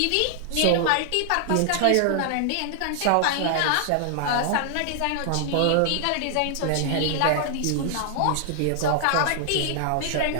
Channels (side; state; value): both; different; correlation 0.00